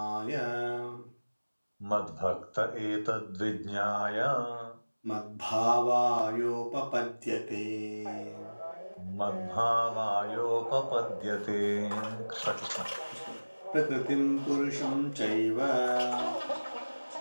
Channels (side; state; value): both; inverted; correlation -1.00